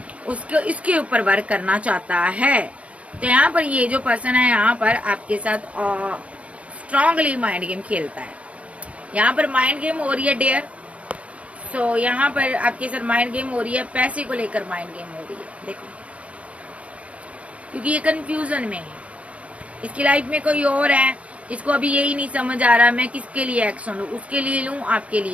इसके ऊपर वर्क करना चाहता है। तो यहाँ पर ये जो पर्सन है यहाँ पर आपके साथ स्ट्रांगली माइंड गेम खेलता है। यहाँ पर माइंड गेम हो रही है डेयर। सो यहाँ पर आपके साथ माइंड गेम हो रही है, पैसे को लेकर माइंड गेम हो रही है। देखो, क्योंकि ये कंफ्यूजन में है, इसकी लाइफ में कोई और है, इसको अभी यही नहीं समझ आ रहा मैं किसके लिए एक्शन लूं, उसके लिए लूं, आपके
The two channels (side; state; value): left; late; 0.064 ms